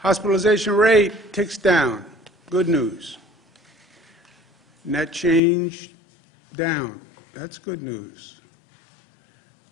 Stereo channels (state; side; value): drops out; right; at 5.4 s